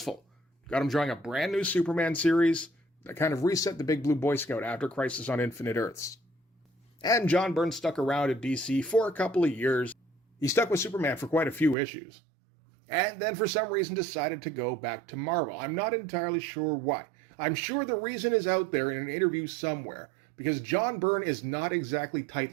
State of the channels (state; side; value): drops out; left; at 11.8 s